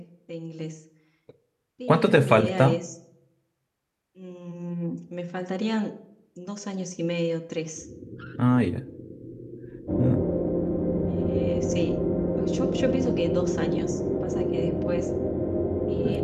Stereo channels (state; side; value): identical; both; correlation 1.00